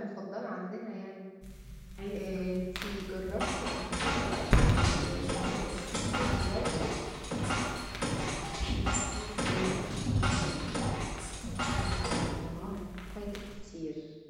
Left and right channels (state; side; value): identical; both; correlation 1.00